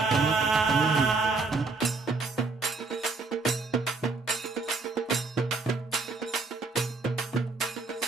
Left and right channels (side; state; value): left; quieter; 4.0 dB